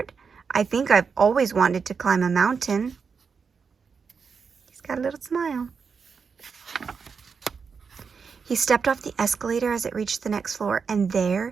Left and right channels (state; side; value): quieter; left; 5.7 dB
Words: I think I've always wanted to climb a mountain. He's got a little smile. He stepped off the escalator as it reached the next floor, and there,